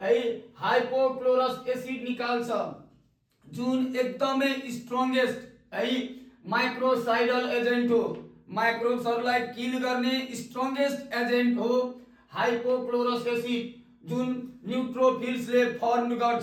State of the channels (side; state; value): both; identical; correlation 1.00